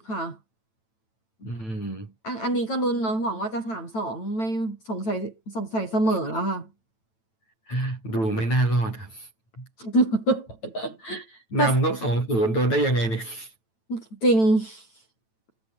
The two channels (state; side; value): late; right; 9.0 ms